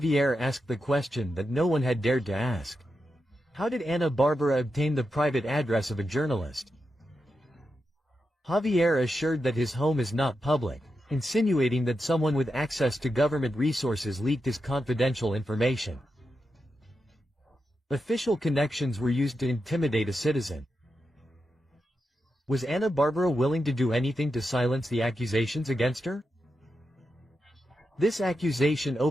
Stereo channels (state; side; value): normal; both; correlation 0.88